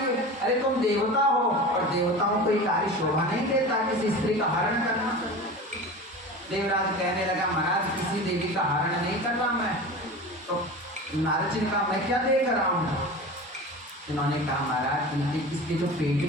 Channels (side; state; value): both; normal; correlation 0.32